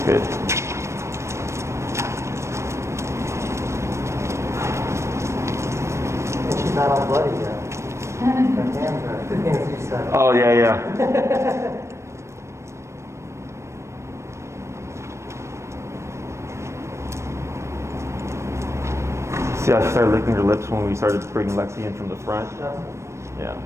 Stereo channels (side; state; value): left; late; 0.13 ms